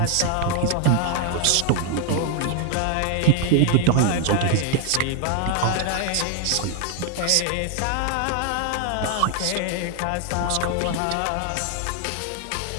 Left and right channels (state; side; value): different; both; correlation 0.01